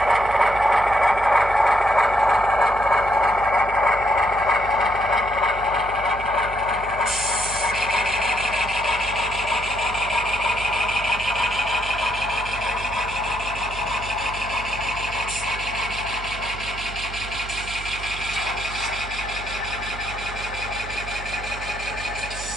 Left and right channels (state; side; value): noise; right; hum, 11 dB below the sound